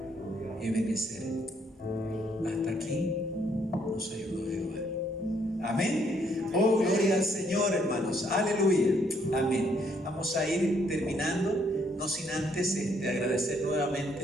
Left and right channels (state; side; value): normal; both; correlation 0.69